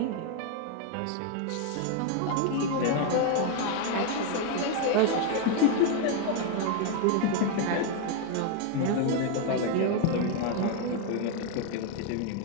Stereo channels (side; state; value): both; different; correlation 0.01